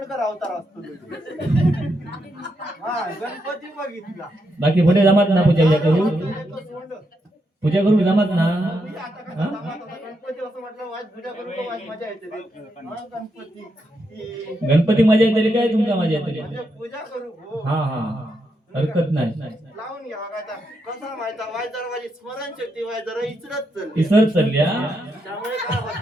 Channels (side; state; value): both; normal; correlation 0.81